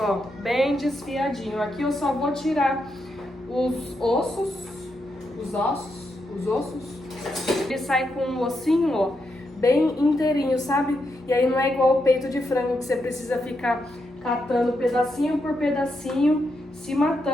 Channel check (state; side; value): normal; both; correlation 0.83